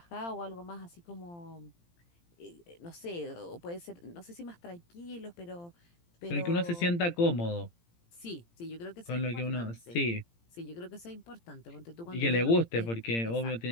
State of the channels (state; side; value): late; right; 17 ms